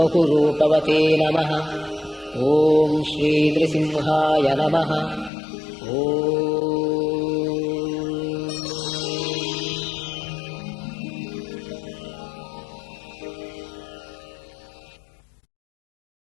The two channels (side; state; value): right; drops out; at 5.3 s